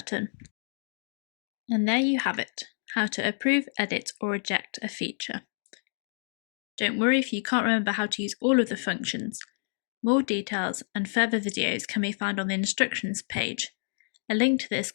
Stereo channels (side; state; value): right; silent; digital silence